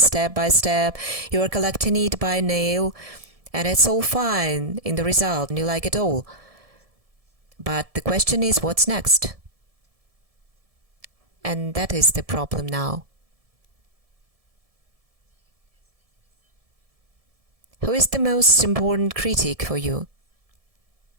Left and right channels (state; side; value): late; left; 1.7 ms